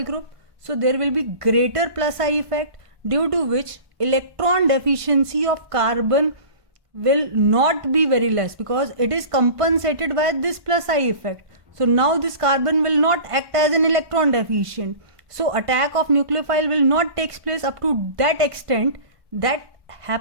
group, so there will be greater plus I effect, due to which electron deficiency of carbon will not be very less, because it is compensated by this plus I effect. So now this carbon will not act as an electron deficient. So attack of nucleophile will not take place up to that extent that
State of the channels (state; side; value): late; left; 1.5 ms